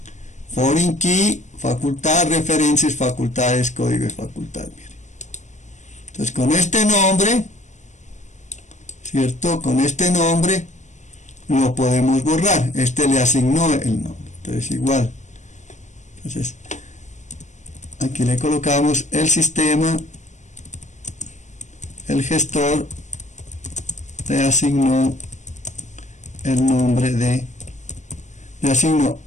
facultad referencias, facultades, código de facultad. Miren. Entonces con este nombre, ¿cierto? Con este nombre lo podemos borrar. Este le asignó el nombre. Entonces igual. Entonces aquí le colocamos el sistema, el gestor le asignó el nombre le asignó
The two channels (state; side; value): late; right; 0.35 ms